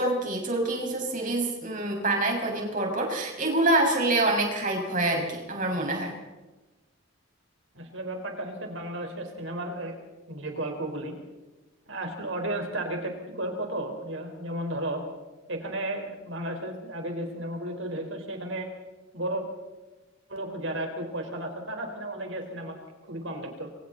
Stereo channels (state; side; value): normal; both; correlation 0.01